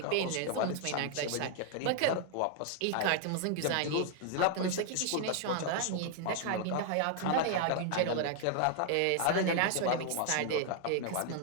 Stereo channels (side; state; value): both; different; correlation 0.00